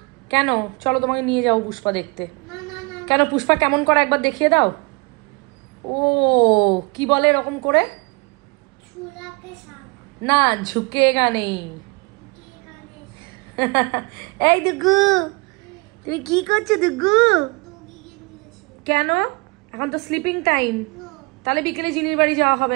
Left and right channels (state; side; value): quieter; left; 28.9 dB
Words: কেন? চলো তোমাকে নিয়ে যাও পুষ্পা দেখতে। কেন, পুষ্পা কেমন করে একবার দেখিয়ে দাও। ও কি বলে এরকম করে? না, ঝুঁকেগা নেই, এই দুগু, তুমি কি করছো দুগু? কেন? এখন তো স্লিপিং টাইম, তাহলে বিকেলে জিনির বাড়ি যাওয়া